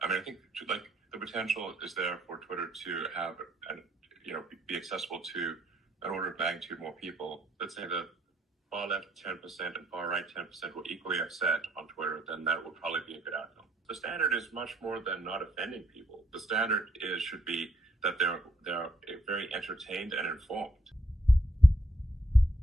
I mean, I think the potential is there for Twitter to have, be accessible to an order of magnitude more people. Let's say the far left 10% and far right 10% were equally upset on Twitter, then that would probably be a good outcome. The standard is much more than not offending people. The standard should be that they're very entertained and informed.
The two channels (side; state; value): both; normal; correlation 0.70